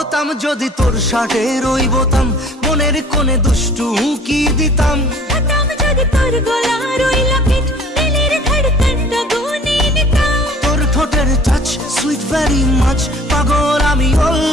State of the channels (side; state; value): both; normal; correlation 0.51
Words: যদি তোর শার্টের ওই বোতাম, মনের কোণে দুষ্টু উকি দিতাম। হতাম যদি তোর গলার ওই লকেট, দিলের ধড়কনটা গুনে নিতাম। তোর ঠোঁটের টাচ সুইট ভেরি মাচ, পাগল আমি